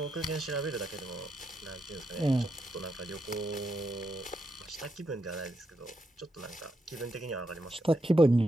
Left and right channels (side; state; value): both; normal; correlation 0.82